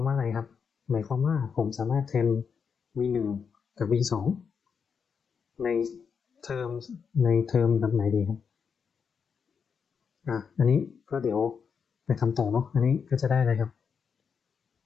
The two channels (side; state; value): right; quieter; 6.3 dB